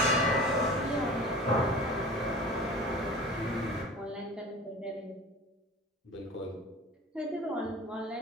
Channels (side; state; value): both; normal; correlation 0.38